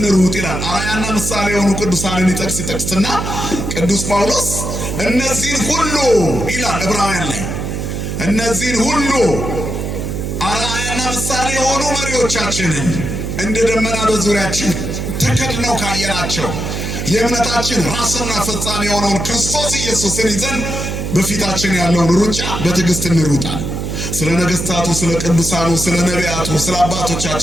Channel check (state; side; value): noise; right; hum, 4 dB below the sound